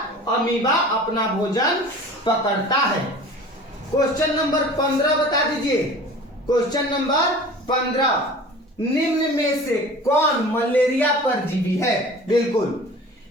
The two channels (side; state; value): both; normal; correlation 0.41